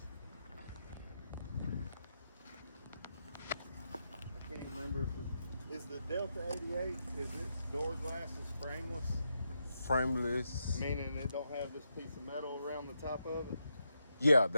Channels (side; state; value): both; inverted; correlation -0.83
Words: I can't remember if is the Delta 88, is its door glasses frameless? frameless. Meaning it don't have this piece of metal around the top of it? Yeah,